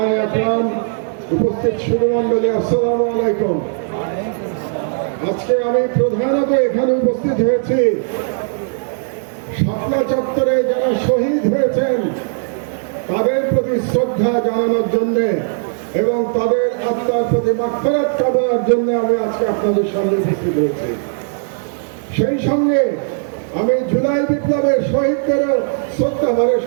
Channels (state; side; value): silent; left; 68 dB below the other